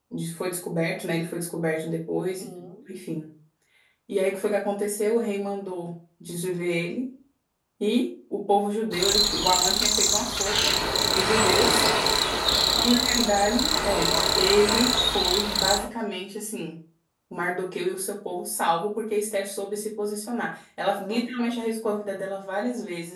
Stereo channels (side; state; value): both; identical; correlation 1.00